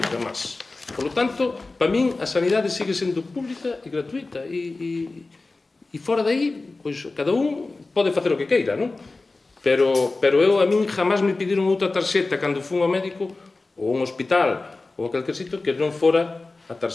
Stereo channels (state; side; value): quieter; right; 3.4 dB